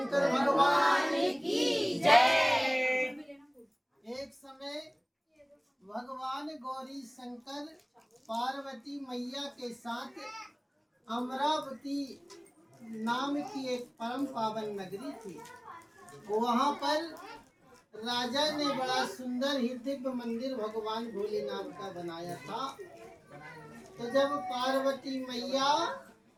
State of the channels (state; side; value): identical; both; correlation 1.00